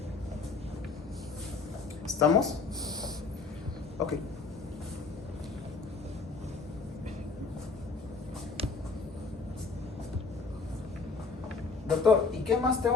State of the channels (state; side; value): quieter; right; 4.3 dB